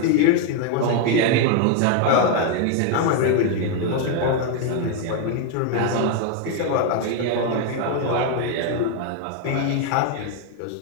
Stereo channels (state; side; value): different; both; correlation 0.01